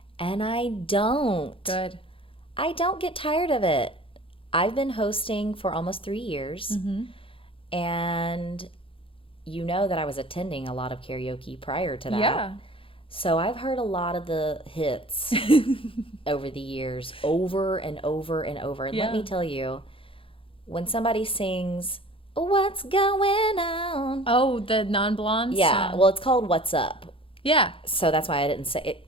And I don't. Good. I don't get tired of it. I've been hosting for almost 3 years. Mm-hmm. And you know that I was attending a lot of karaoke prior to that. Yeah. So I've heard a lot of the hits over the years, over and over and over. And let me tell you, when somebody sings, "What's Going On?" Oh, the non-blonde Yeah. song. Well, it's called "What's Up." Yeah. So that's why I didn't say it.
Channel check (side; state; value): right; late; 0.26 ms